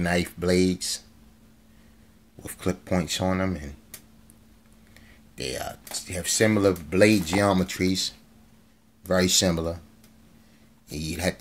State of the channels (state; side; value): identical; both; correlation 1.00